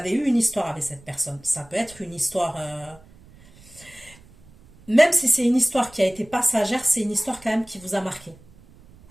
eu une histoire avec cette personne. Ça peut être une histoire... même si c'est une histoire qui a été passagère, c'est une histoire quand même qui vous a marqué.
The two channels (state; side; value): noise; right; rumble, 25 dB below the sound